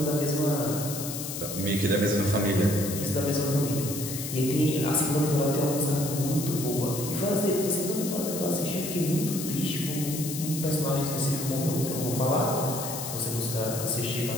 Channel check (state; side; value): noise; left; hiss, 6 dB below the sound